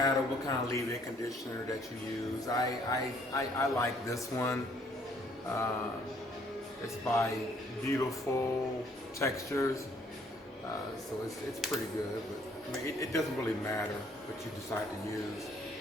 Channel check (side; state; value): both; normal; correlation 0.64